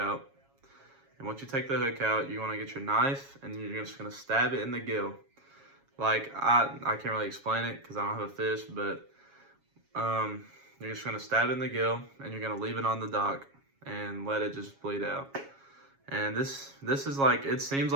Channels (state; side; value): late; left; 7.3 ms